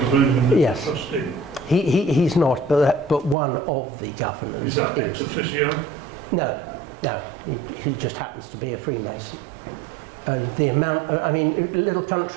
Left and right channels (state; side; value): drops out; left; at 3.4 s